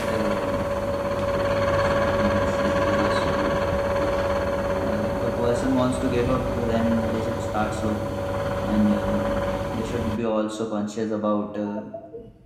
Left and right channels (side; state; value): both; identical; correlation 1.00